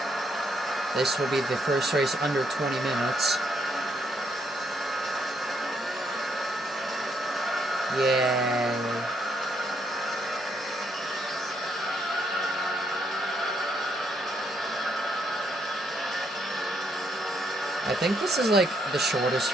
This will be the first race under 20 minutes. Yay. I think this is like the shortest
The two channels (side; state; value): both; normal; correlation 0.73